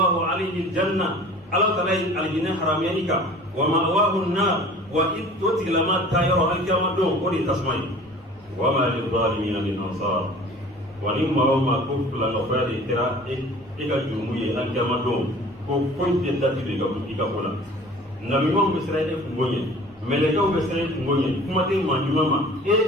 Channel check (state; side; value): normal; both; correlation 0.45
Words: alayhi al-janna ala taala ye alijinɛ haramuya i kan wa ma'wahu an-nar wa i to tigilama taa yɔrɔ alikiyama don o de ye tasuma ye wa ma lil-zalimina min ansar wa ni maa o maa ko filanɛkoya de kɛra e ka jurumu ye alikiyama don ko foyi tɛ dati don i ka ko la nabiɲumanw bɛ siran e kungo ɲɛ mɛlɛkɛw bɛ siran e kungo ɲɛ kuma tɛ maa ɲuman ma